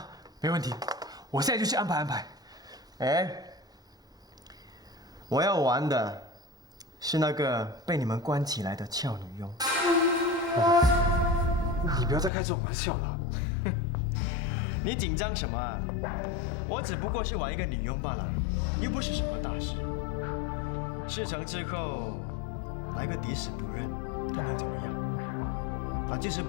没问题，我现在就去安排。我要玩的是那个被你们关起来的俏女佣。你不要再开这种玩笑了。你紧张什么啊？我只不过是玩一个女佣罢了，又不是什么大事。事成之后，来个抵死不认，他能怎么样？即使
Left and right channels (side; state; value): right; drops out; at 12.3 s